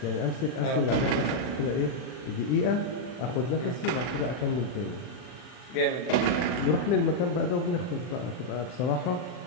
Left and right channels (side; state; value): right; late; 40 ms